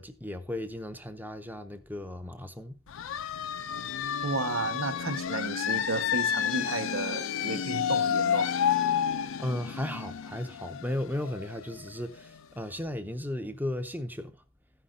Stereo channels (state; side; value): quieter; right; 4.0 dB